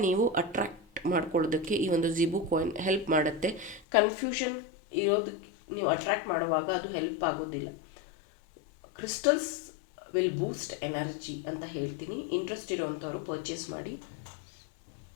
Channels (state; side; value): drops out; right; at 3.8 s